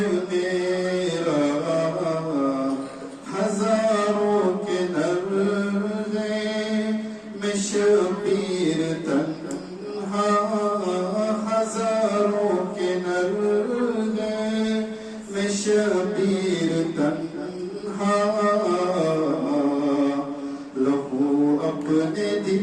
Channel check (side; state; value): both; identical; correlation 1.00